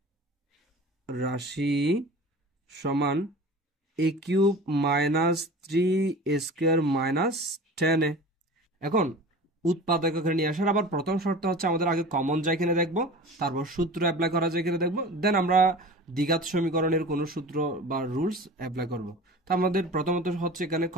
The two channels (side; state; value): both; normal; correlation 0.37